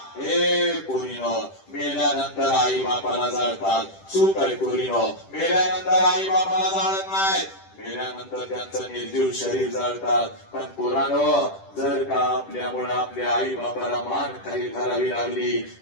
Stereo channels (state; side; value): late; right; 10 ms